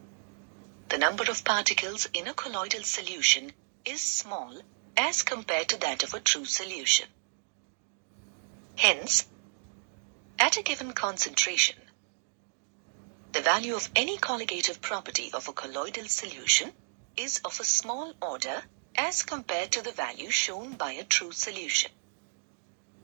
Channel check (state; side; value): silent; left; digital silence